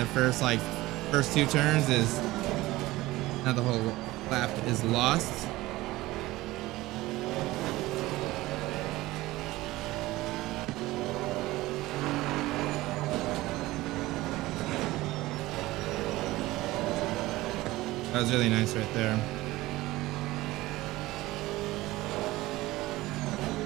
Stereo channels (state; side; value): quieter; left; 18.4 dB